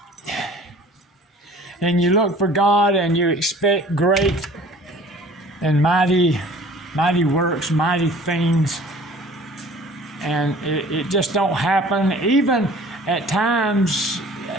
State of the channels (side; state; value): both; normal; correlation 0.48